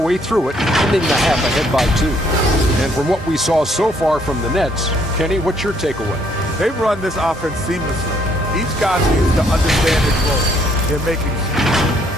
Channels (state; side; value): normal; both; correlation 0.67